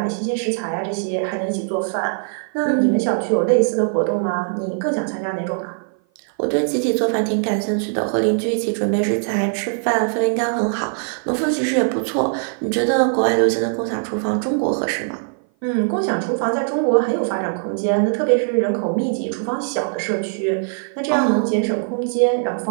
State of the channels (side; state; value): left; silent; 56 dB below the other